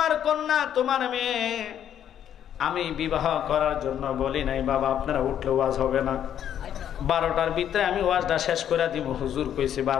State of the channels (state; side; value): quieter; right; 9.8 dB